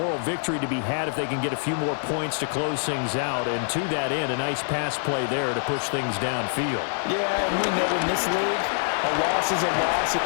victory to be had if they can get a few more points to close things out. And to that end, a nice pass play there to push things downfield. Yeah, and we know in this league, a loss is a loss. Oh,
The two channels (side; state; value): right; silent; digital silence